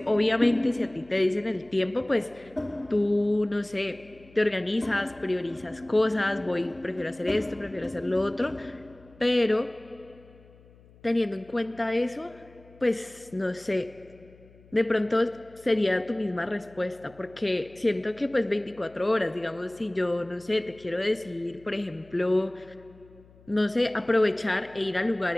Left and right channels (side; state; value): left; noise; hum, 25 dB below the sound